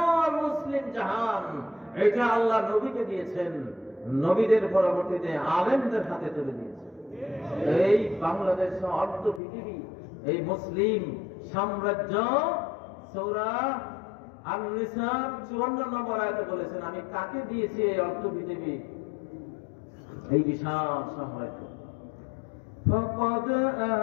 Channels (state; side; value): drops out; right; at 9.4 s